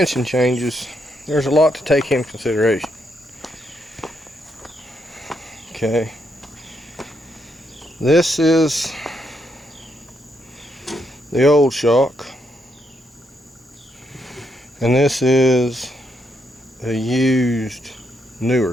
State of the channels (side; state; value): both; normal; correlation 0.78